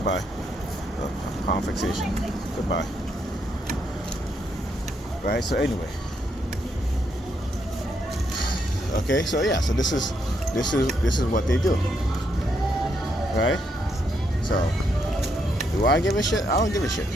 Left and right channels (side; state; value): both; normal; correlation 0.77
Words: Palm fixation. Goodbye. Right? So anyway. Okay, so yeah, so this is what they do. Right? So do I give a shit? I don't give a shit.